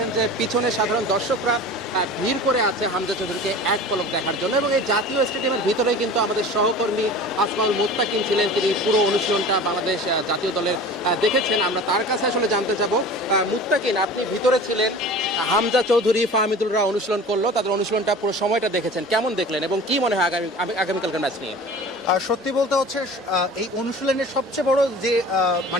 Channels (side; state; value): both; normal; correlation 0.39